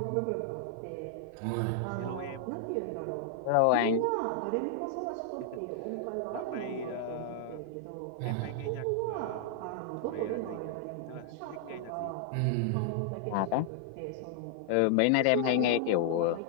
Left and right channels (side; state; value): both; different; correlation 0.00